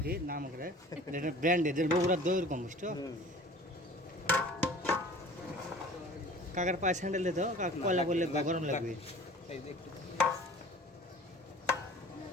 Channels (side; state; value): both; normal; correlation 0.45